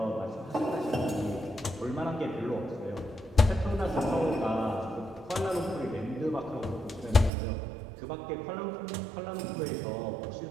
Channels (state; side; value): drops out; left; at 7.3 s